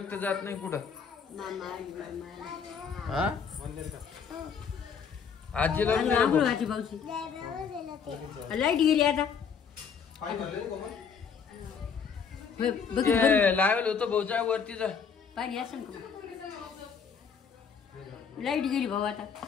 जात नाही कुठं. हा आजीला बी नाही रे भाऊ. लाईट गेली आता. ते लावेल होतं भाऊच्या वरती जा. पाणी असं का. लाईट गेली भाऊ आता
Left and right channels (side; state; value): right; quieter; 6.5 dB